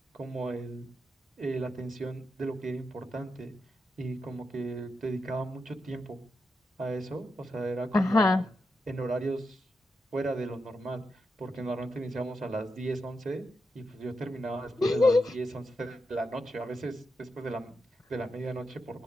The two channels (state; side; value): normal; both; correlation 0.86